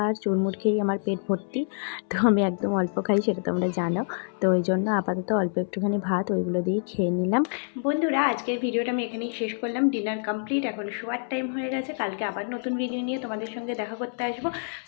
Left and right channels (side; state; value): right; silent; 60 dB below the other